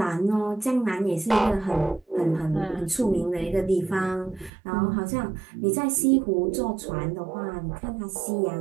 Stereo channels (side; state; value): left; drops out; at 4.5 s